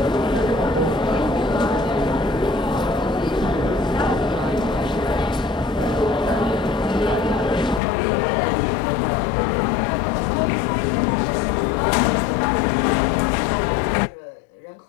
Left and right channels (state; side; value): drops out; right; at 7.8 s